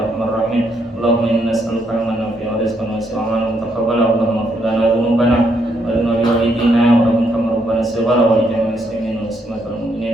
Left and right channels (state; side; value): normal; both; correlation 0.75